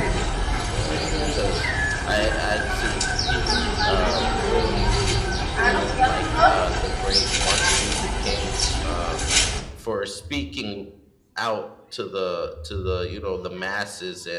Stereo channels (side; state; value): both; identical; correlation 1.00